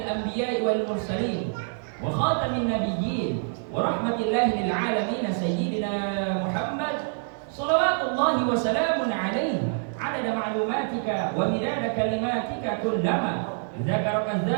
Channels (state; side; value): silent; left; 61 dB below the other